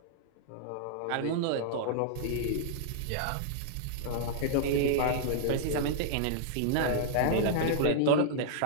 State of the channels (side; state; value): both; different; correlation -0.02